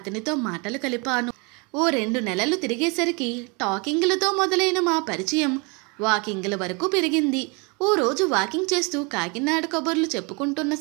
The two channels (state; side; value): quieter; left; 30.7 dB